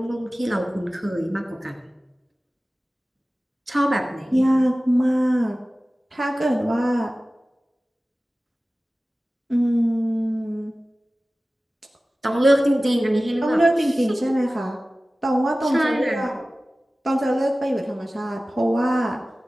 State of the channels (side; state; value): both; normal; correlation 0.97